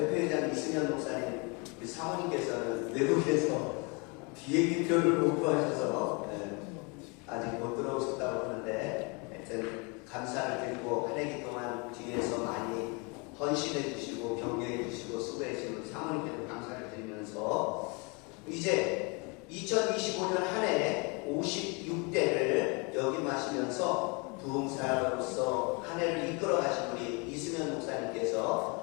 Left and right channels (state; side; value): quieter; right; 31.1 dB